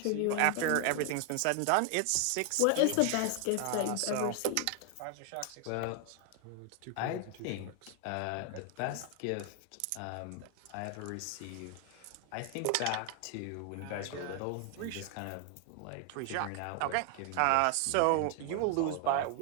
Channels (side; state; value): both; different; correlation 0.00